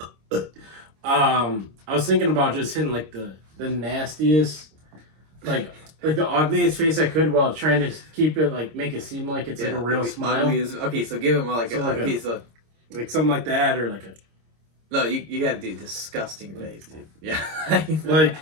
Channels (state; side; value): late; left; 26 ms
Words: was thinking about just hitting like the nastiest like the ugliest face I could while trying to keep it make it seem like it's like a real smile. Okay, so give him like something like that or like a. No, you gotta do disgusting face, dude. Yeah.